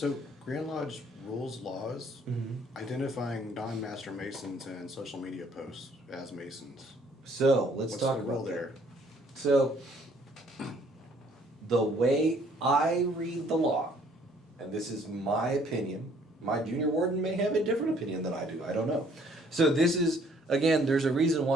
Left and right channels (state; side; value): normal; both; correlation 0.61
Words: Grand Lodge rules laws identifying non-master masons and social media posts as masons. So let's What's talk the rule about there? that. So the way I read the law, and this is my opinion, my junior warden may have a different opinion than I do. I don't know. So this is, again, there's a reason